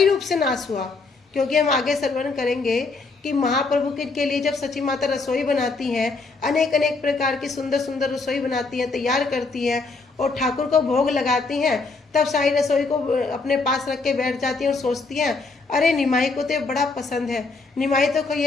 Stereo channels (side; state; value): right; quieter; 3.9 dB